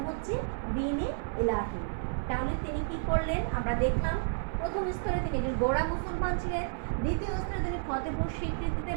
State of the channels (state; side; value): silent; left; 56 dB below the other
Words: হচ্ছে দ্বীন-এ ইলাহি। তাহলে তিনি কি করলেন, আমরা দেখলাম প্রথম স্তরে তিনি একজন গোঁড়া মুসলমান ছিলেন, দ্বিতীয় স্তরে তিনি ফতেপুর